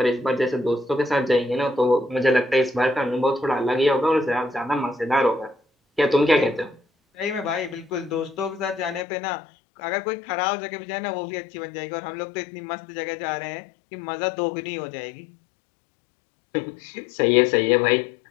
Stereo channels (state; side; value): drops out; right; at 9.1 s